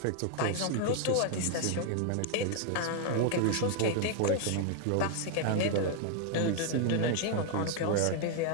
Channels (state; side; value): different; both; correlation 0.00